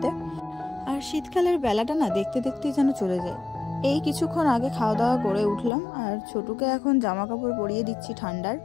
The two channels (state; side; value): drops out; right; at 5.7 s